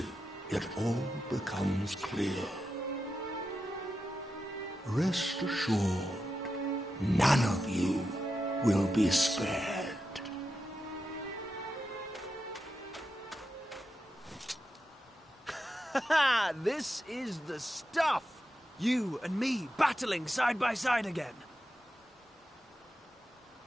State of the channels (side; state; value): both; normal; correlation 0.89